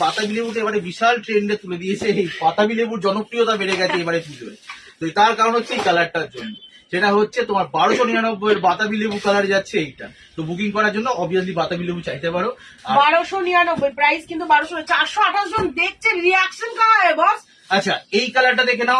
বাতাবি লেবুটা এবারে বিশাল ট্রেন্ডে তুলে দিয়েছে। এই বাতাবি লেবুর জনপ্রিয়তা বেড়ে গেছে এবারে পুজোয়। তো তো তার কারণ হচ্ছে এই কালারটার জন্য, সেটা হচ্ছে তোমার 1299 বাতাবি লেবু কালার যাচ্ছে এইটা। তো বুকিং করার জন্য অবভিয়াসলি বাতাবি লেবু চাইতে পারো। আর 1299 প্রাইস, কিন্তু 1200 428 জন দেখছে, রিয়াকশন কাহা है বস? আচ্ছা এই কালারটা দেখে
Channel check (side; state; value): both; identical; correlation 1.00